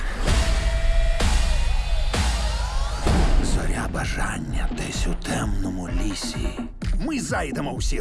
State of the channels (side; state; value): both; identical; correlation 1.00